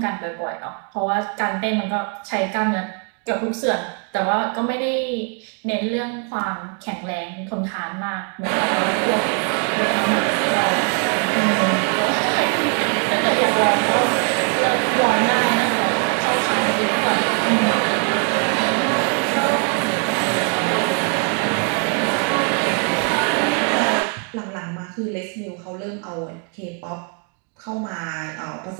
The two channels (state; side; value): quieter; left; 36.6 dB